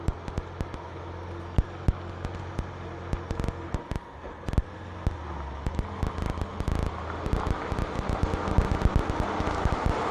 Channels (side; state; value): both; identical; correlation 1.00